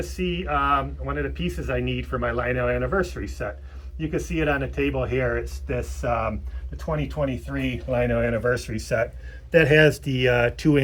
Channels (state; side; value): identical; both; correlation 1.00